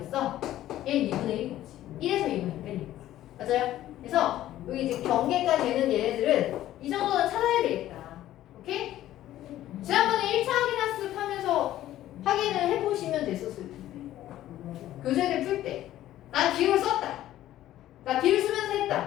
얘는 2분의 1인 거지. 1에서 2분의 1이니까. 맞아요? 그래서 여기 이제 경계가 되는 얘네들은 이 정도는 찾아야 되겠다. 오케이? 지난번에 1차 확인학습 하면서 확인을 해보시면 됐었을 텐데. 교재를 풀 때. 난 비율을 썼다. 나 비율 쓰면서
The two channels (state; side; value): quieter; right; 13.5 dB